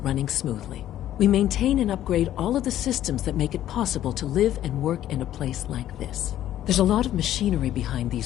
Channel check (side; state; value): right; quieter; 12.4 dB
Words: running smoothly. We maintain and upgrade all of the systems that make it possible to live and work in a place like this. There's a lot of machinery behind